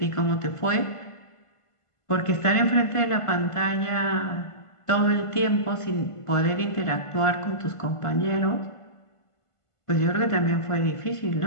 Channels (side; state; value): right; late; 1.5 ms